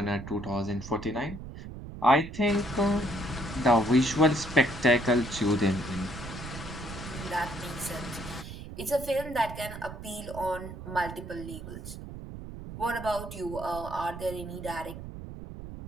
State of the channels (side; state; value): right; noise; rumble, 11 dB below the sound